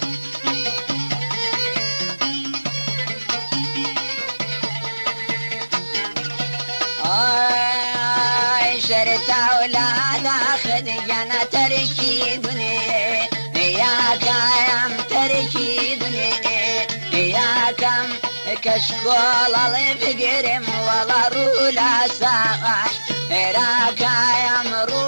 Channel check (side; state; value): both; inverted; correlation -1.00